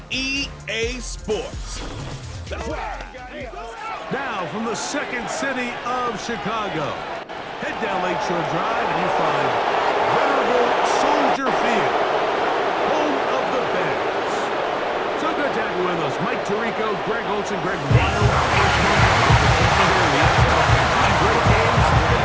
EA Sports. Now from the second city of Chicago, head down Lakeshore Drive and you find venerable Soldier Field, home of the Bears. So good to have you with us. Mike Tirico, Greg Olson, Greg Wild. Great games,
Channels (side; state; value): both; identical; correlation 1.00